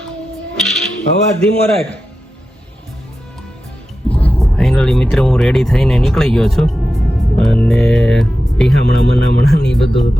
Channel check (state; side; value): normal; both; correlation 0.91